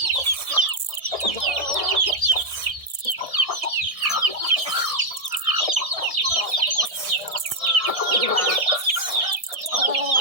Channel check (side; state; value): left; late; 1.7 ms